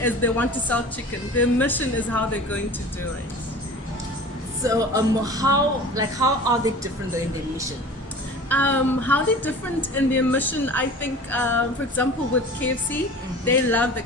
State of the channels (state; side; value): normal; both; correlation 0.40